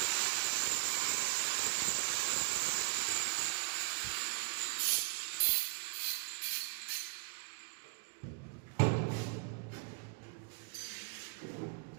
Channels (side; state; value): left; quieter; 32.4 dB